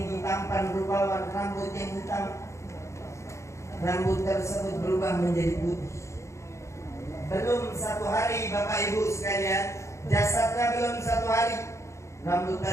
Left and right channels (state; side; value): late; right; 0.14 ms